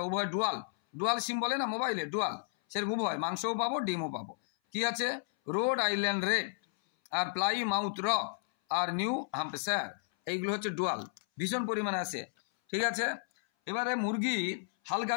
উভয় ডুয়াল সিম বলে না মোবাইলে, ডুয়াল, সেরকম উভয়, মাংসও পাবো ডিমও পাবো। কি আছে? রোড আইল্যান্ড রেড আর প্লাই মাউথ রক আর নিউ হ্যাম্পশায়ার, এইগুলো হচ্ছে ডুয়াল, ভীষণ পরিমাণে আছে। ঠিক আছে, এবারে মুরগি হালকা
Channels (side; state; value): right; silent; 56 dB below the other